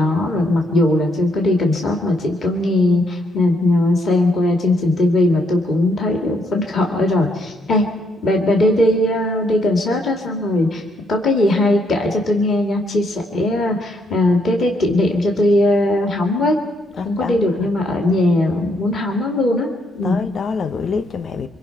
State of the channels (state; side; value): normal; both; correlation 0.73